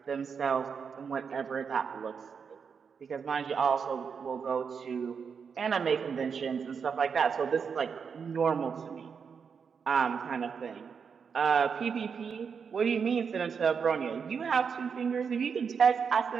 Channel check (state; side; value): quieter; left; 6.3 dB